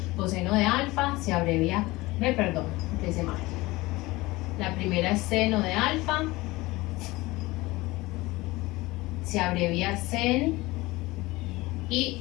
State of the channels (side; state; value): right; quieter; 20.7 dB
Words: Coseno de alfa se abrevia, empecé mal. La primera es seno de alfa, se abrevia sen